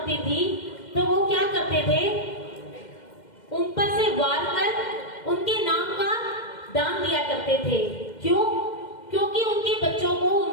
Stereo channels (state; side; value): late; right; 2.1 ms